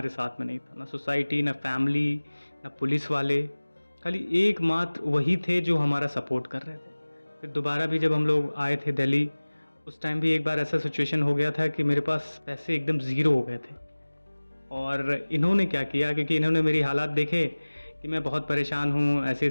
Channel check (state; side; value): inverted; both; correlation -1.00